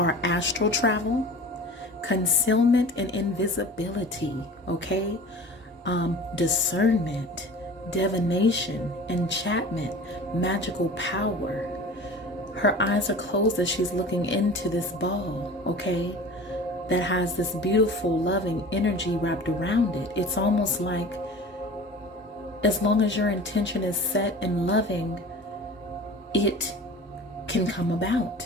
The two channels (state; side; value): normal; both; correlation 0.39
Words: astral travel, concealment and invisibility, okay? Discernment, divination, enchantment, magical power. Her eyes are closed as she's looking into this ball, okay? That has this beautiful, loving energy wrapped around it. It's almost like, as long as your intention is set and loving, it can come